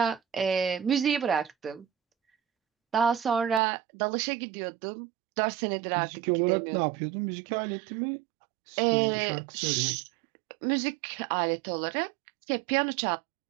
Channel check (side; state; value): left; drops out; at 3.6 s